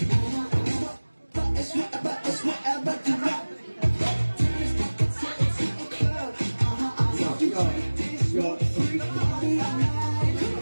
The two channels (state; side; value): inverted; both; correlation -1.00